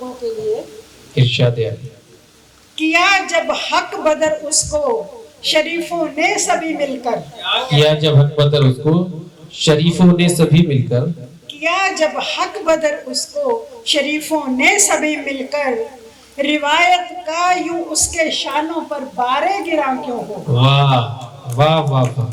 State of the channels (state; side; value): identical; both; correlation 1.00